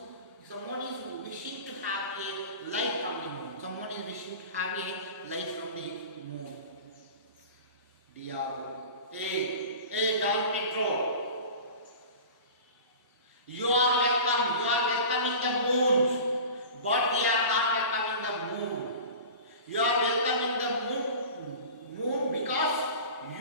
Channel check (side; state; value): both; inverted; correlation -0.36